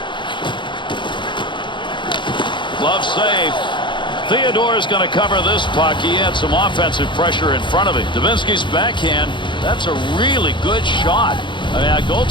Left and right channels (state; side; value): late; right; 0.23 ms